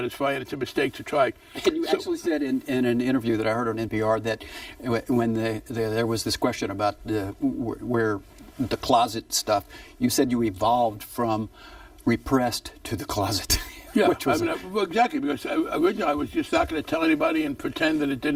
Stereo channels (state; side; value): identical; both; correlation 1.00